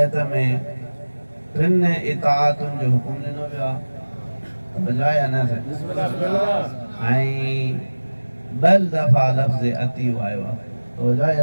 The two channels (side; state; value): both; inverted; correlation -1.00